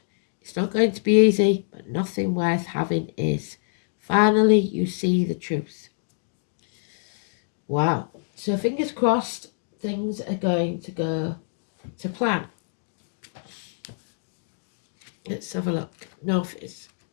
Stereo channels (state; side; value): silent; right; digital silence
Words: It's not going to be easy, but nothing worth having is. Finally, you see the truth. Wow. So fingers crossed, things are going to go to plan. Let's have a look. Northeast.